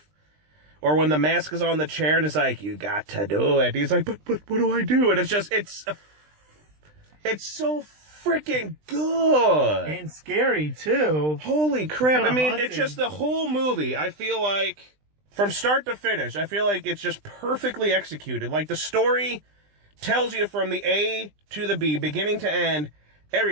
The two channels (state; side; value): late; left; 20 ms